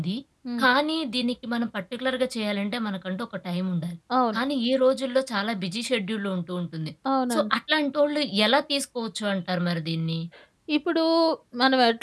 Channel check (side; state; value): both; identical; correlation 1.00